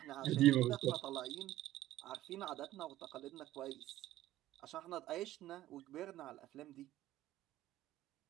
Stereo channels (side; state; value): left; quieter; 14.7 dB